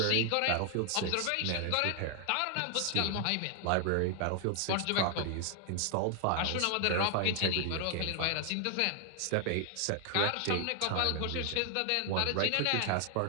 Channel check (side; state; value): both; different; correlation 0.00